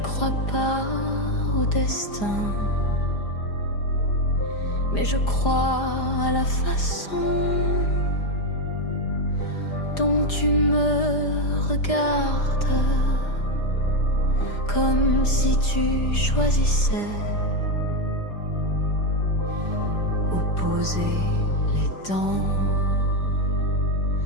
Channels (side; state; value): right; late; 5.0 ms